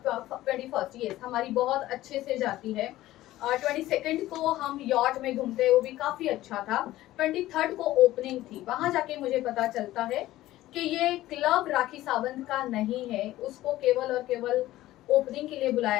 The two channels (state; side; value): quieter; right; 15.6 dB